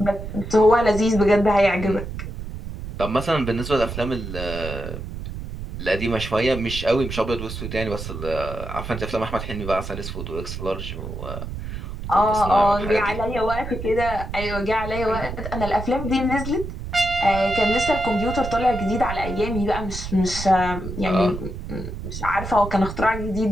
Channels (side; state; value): right; noise; rumble, 8 dB below the sound